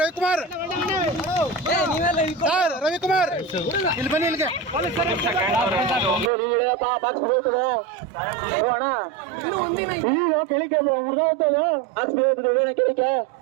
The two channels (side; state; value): left; drops out; at 6.3 s